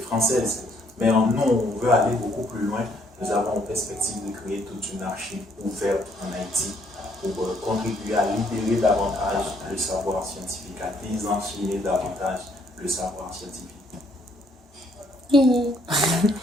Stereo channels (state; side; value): normal; both; correlation 0.67